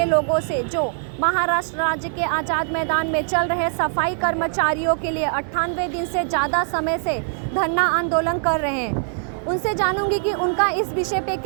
लोगों से जो महाराष्ट्र राज्य के आज़ाद मैदान में चल रहे सफाई कर्मचारियों के लिए 98 दिन से ज़्यादा समय से धरना आंदोलन कर रहे हैं। उनसे जानूंगी कि उनका इस विषय पे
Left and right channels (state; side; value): silent; left; 64 dB below the other